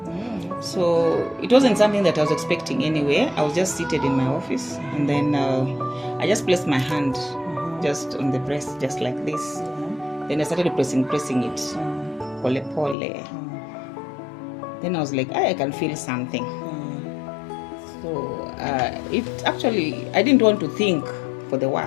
So it wasn't something that I was expecting anyway. I was just seated in my office, and then I just placed my hand just on the breast, just like this. Then I started pressing it, pole pole. Then I was like, I can feel something. So it actually, I didn't want to think for the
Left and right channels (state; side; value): drops out; right; at 13.0 s